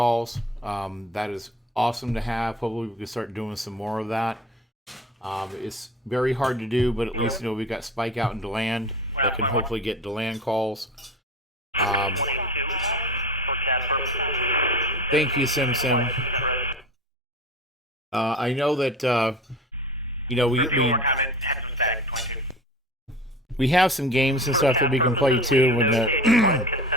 That is awesome to have. Hopefully we can start doing some more of that. It's very hard to do, but at least we got Spike out in DeLand. I can hopefully get DeLand calls. 22 for CAD purposes. Thank you, Simpson. I know that we one more comment. Had some static. 22. We have some games and stuff that we can play too. When implied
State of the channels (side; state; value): both; normal; correlation 0.36